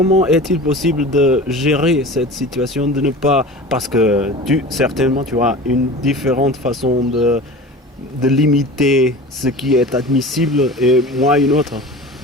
est-il possible de gérer cette situation, de ne pas... Parce que certainement, tu as une différente façon de limiter ce qui est admissible et moi une autre.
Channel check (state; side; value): normal; both; correlation 0.36